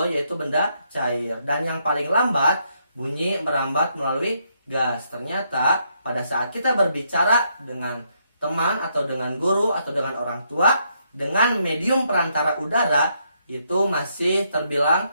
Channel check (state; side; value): inverted; both; correlation -0.75